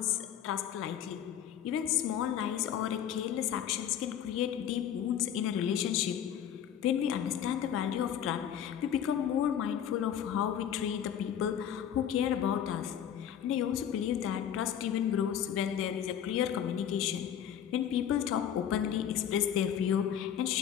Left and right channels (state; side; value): quieter; right; 9.5 dB